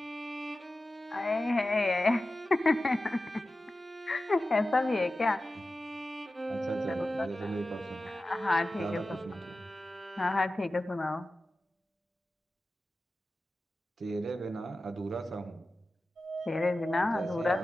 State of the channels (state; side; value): normal; both; correlation 0.94